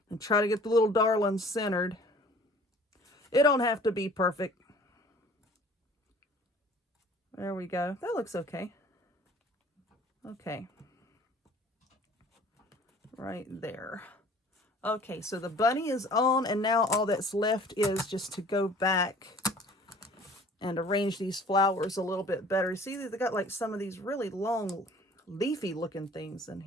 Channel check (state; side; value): normal; both; correlation 0.50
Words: and try to get the little darling centered. It don't have to be perfect. There we go. That looks okay. Okay. Right there. Okay, so the bunny is on, and now all that's left is just to go back and arrange these flowers a little bit better. You see, they got like some of these really long, leafy looking things in